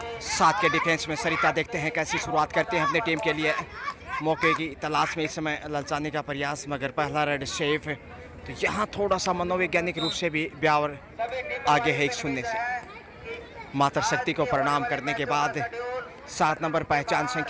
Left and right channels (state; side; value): identical; both; correlation 1.00